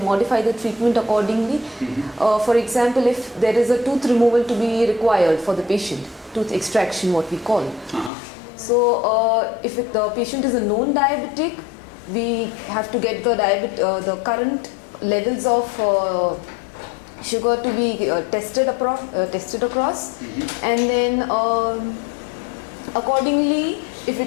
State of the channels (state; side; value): drops out; right; at 8.1 s